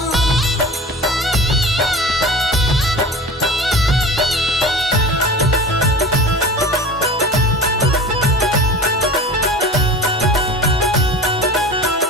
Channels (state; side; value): normal; both; correlation 0.37